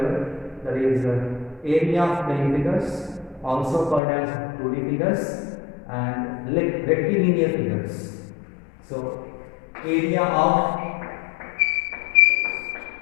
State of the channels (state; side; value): drops out; right; at 4.0 s